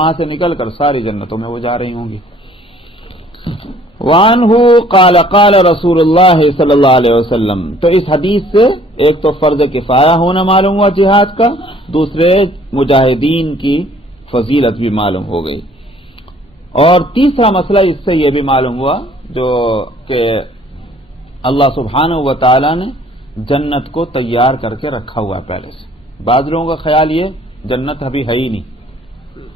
سے نکل کر ساری جنتوں میں وہ جا رہی ہوں گی. وعنہ قال قال رسول اللہ صلی اللہ علیہ وسلم. تو اس حدیث سے ایک تو فرض کفایہ ہونا معلوم ہوا جہاد کا، دوسرے مجاہدین کی فضیلت بھی معلوم ہو گئی، اور تیسرا مسئلہ اس سے یہ بھی معلوم ہوا جو کہ اللہ سبحانہ و تعالی نے جنت کو تیار کر کے رکھا ہوا پہلے سے. بعض لوگوں کا خیال یہ جنت ابھی ہے ہی نہیں،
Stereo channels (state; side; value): normal; both; correlation 0.57